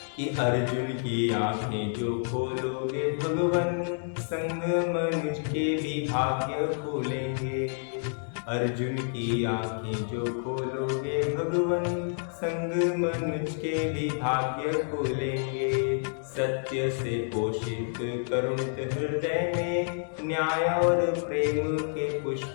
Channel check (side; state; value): right; silent; digital silence